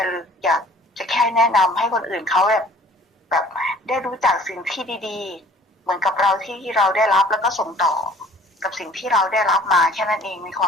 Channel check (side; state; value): both; normal; correlation 0.52